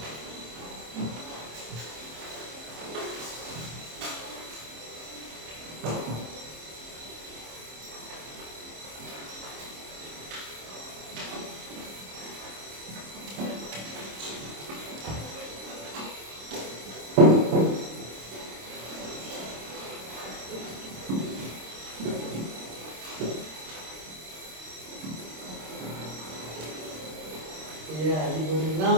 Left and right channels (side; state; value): left; late; 26 ms